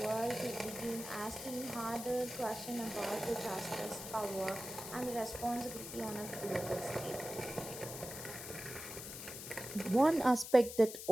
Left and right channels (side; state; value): left; noise; hiss, 9 dB below the sound